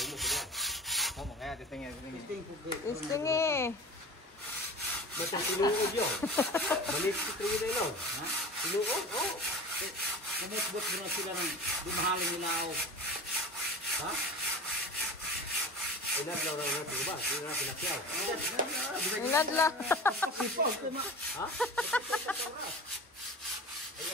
mo sila? Oh, mo kaya testingin. Testing po. Isting eh. Batang tinuod yun. Manis ko tayo na yun. Ha? Tinuod? Oo. Kumutbot mo na sila ng dumahalin nila ako. Ha? Inadlaw na natin ba? Hindi na pinakyaw. Inadla. Ha? Ay,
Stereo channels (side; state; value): both; normal; correlation 0.35